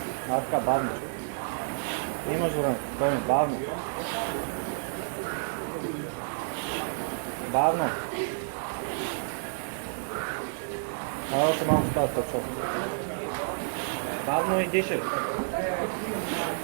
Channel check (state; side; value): silent; left; digital silence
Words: Така, бавно. Имаш време. Спокойно, бавно. Още малко става точно. Бавно и дишай.